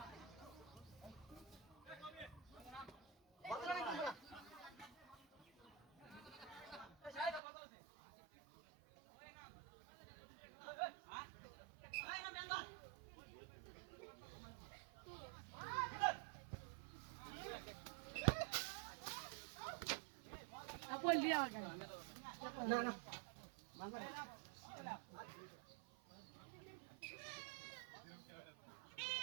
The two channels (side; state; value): left; drops out; at 7.4 s